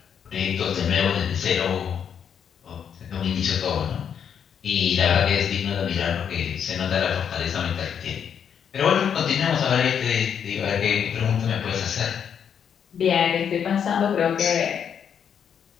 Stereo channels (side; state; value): right; quieter; 8.0 dB